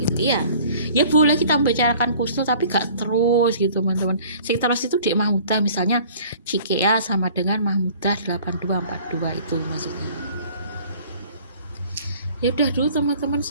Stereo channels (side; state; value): both; inverted; correlation -0.50